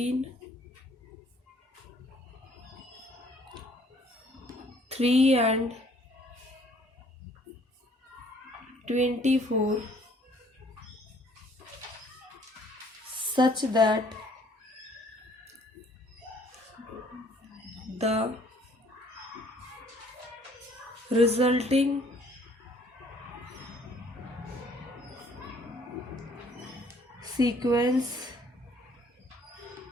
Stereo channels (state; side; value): normal; both; correlation 0.59